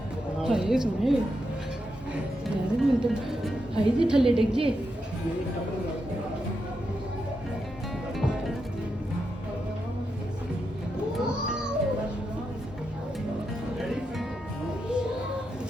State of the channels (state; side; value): normal; both; correlation 0.85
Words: ਹਾਏ ਸੋਹਣੇ ਯਾਰ ਮੈਨੂੰ ਤਾਂ ਹਾਏ ਜੀ ਥੱਲੇ ਡਿੱਗ ਜੇ